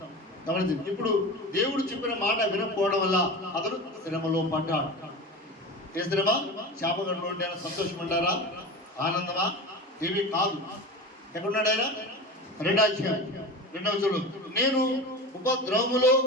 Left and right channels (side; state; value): both; normal; correlation 0.29